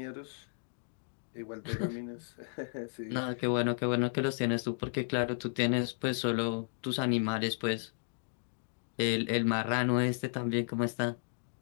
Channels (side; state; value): right; silent; digital silence